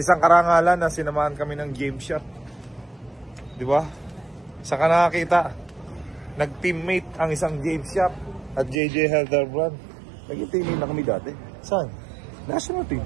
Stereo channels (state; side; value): drops out; left; at 8.8 s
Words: karangalan na sinamahan kami ng game shot. Di ba? Saka nakakita, nag-teammate ang isang game shop at JJ Helderbrand. Naging teammate na kami dati. Saan? National team.